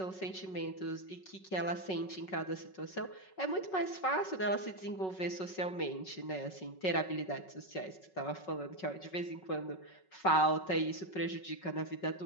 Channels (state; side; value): late; right; 5.4 ms